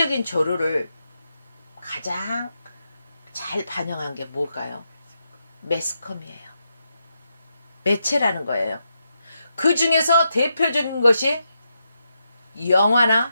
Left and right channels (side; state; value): both; inverted; correlation -0.84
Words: 조류를 가장 잘 반영한 게 뭘까요? 매스컴이에요. 매체라는 거예요. 그 중에서 대표적인 것이 영화나